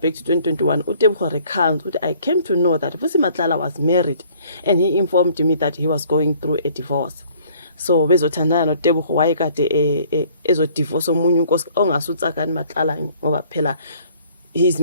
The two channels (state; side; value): inverted; both; correlation -0.57